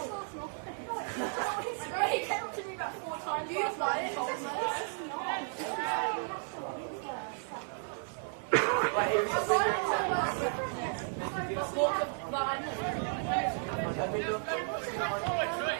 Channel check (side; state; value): left; silent; 55 dB below the other